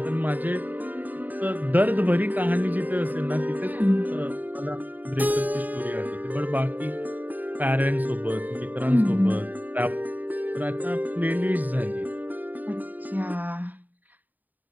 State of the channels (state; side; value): late; left; 0.085 ms